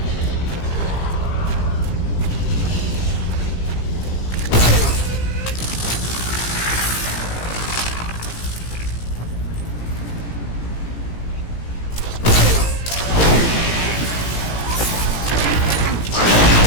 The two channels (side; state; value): right; late; 17 ms